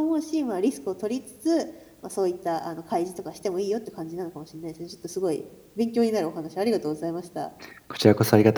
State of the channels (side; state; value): both; identical; correlation 1.00